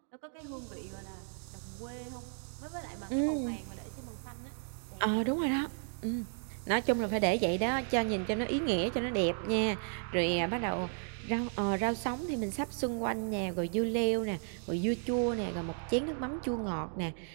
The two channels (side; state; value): left; silent; 55 dB below the other